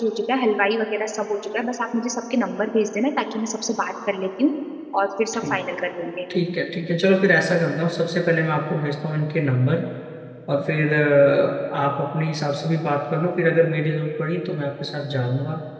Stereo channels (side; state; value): both; identical; correlation 1.00